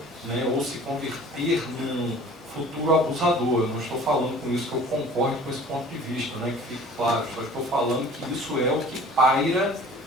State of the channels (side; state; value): both; normal; correlation 0.47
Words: né, ou se converter num futuro abusador. Eu não estou falando com isso que eu concordo com esse ponto de vista, né, que fique claro, só estou falando que isso é o que paira,